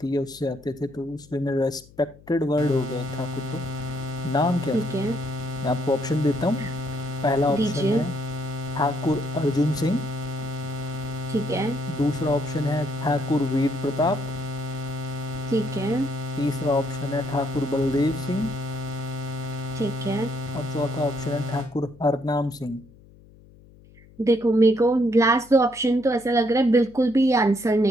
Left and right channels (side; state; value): left; noise; hum, 24 dB below the sound